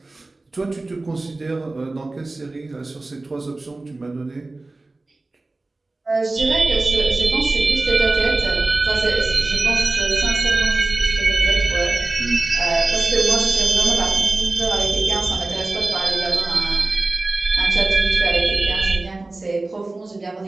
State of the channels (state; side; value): quieter; left; 3.2 dB